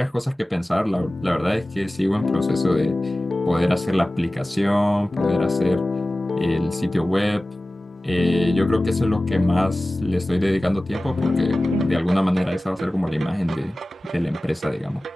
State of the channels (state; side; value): normal; both; correlation 0.97